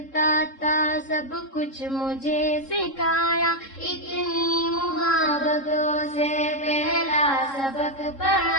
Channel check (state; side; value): late; right; 3.7 ms